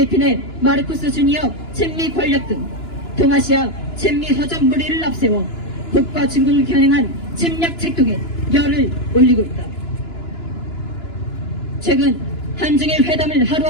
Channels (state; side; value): late; right; 2.9 ms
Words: 마르코스 주니어 친미 권력 등 동아시아 친미 허접 무리를 앞세워 북과 중국을 겨냥한 침략 책동에 열을 올리고 있다. 최근 한중일 회담을 하루